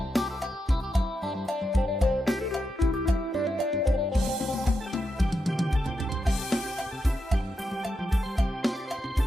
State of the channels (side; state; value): both; normal; correlation 0.86